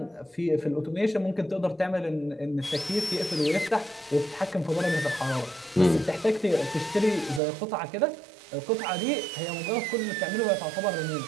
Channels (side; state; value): left; drops out; at 7.4 s